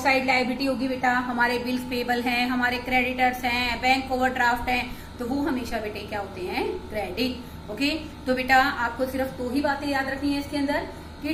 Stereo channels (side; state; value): both; identical; correlation 1.00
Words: लाइबिलिटी होगी बेटा, हमारे bills payable हैं, हमारे creditors हैं, bank overdraft हैं, तो वो हमेशा बेटे क्या होते हैं, क्रेडिट। ओके, तो बेटा आपको सिर्फ दो ही बातें याद रखनी है इसके अंदर कि